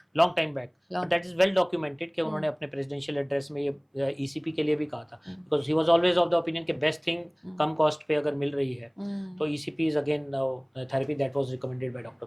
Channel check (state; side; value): identical; both; correlation 1.00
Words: long time back, but that is well documented कि उन्होंने अपने प्रेसिडेंशियल एड्रेस में ये ईसीपी के लिए भी कहा था, because he was always of the opinion कि बेस्ट थिंग कम कॉस्ट पे अगर मिल रही है तो ECP is again therapy that was recommended by